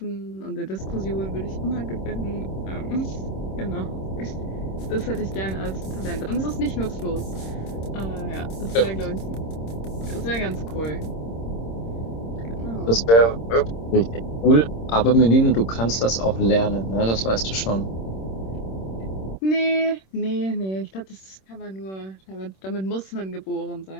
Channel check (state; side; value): late; right; 26 ms